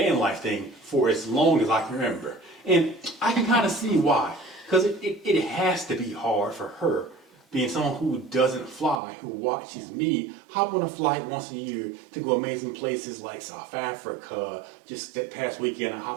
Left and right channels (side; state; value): left; drops out; at 9.0 s